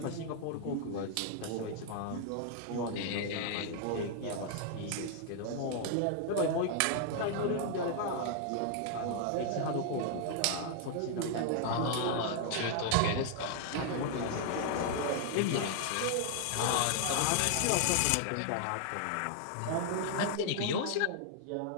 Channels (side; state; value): both; different; correlation 0.00